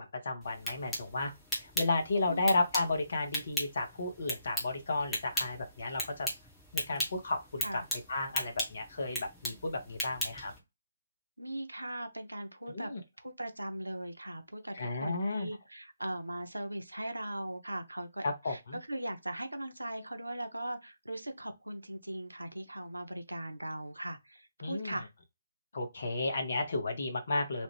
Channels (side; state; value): both; inverted; correlation -0.79